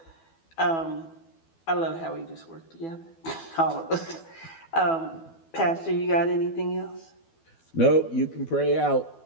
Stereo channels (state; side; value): late; right; 12 ms